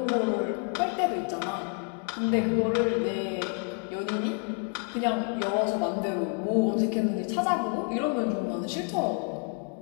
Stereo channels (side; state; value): right; quieter; 39.8 dB